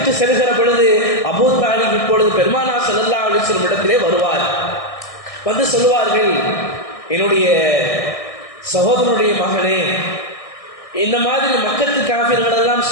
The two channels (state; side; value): late; right; 1.6 ms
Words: செல்கிற பொழுது அபூ தாலிப் இப்பொழுது பெருமானார் ஸல்லல்லாஹு அலைஹி வஸல்லம் இடத்திலே வருவார். வந்து சொல்லுவார்கள், என்னுடைய சகோதரனுடைய மகனே, இந்த மாதிரி மக்கத்து காபிர்கள் எல்லாம்